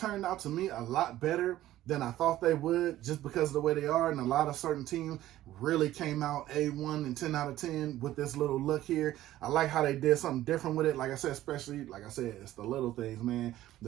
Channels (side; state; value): left; quieter; 14.3 dB